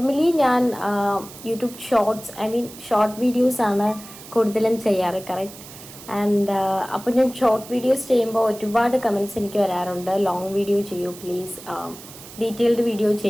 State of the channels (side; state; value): right; noise; hiss, 17 dB below the sound